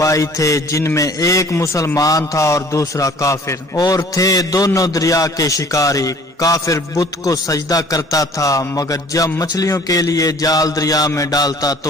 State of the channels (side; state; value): both; normal; correlation 0.51